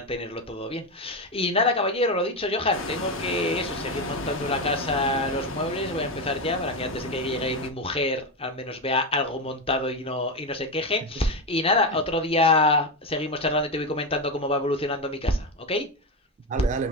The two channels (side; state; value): both; normal; correlation 0.13